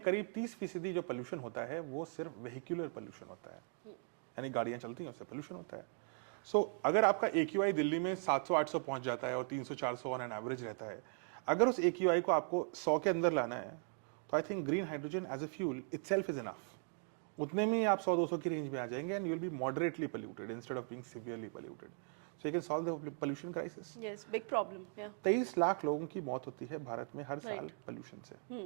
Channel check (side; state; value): left; silent; 52 dB below the other